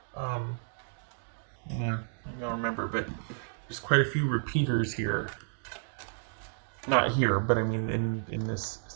Yeah, I don't remember, but there's quite a few repeaters here. Not here, but I mean in this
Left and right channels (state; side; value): silent; left; digital silence